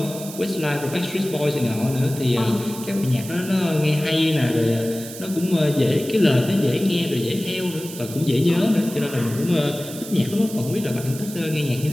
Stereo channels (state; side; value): noise; right; hiss, 13 dB below the sound